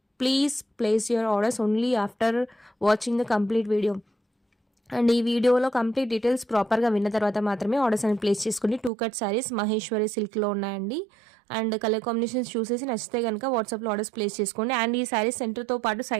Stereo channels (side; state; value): left; drops out; at 8.9 s